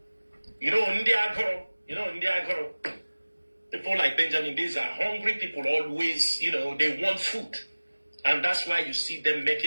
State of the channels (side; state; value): both; inverted; correlation -1.00